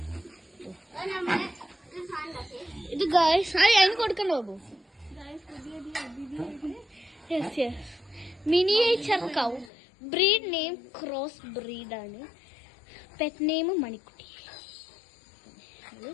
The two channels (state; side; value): drops out; right; at 9.7 s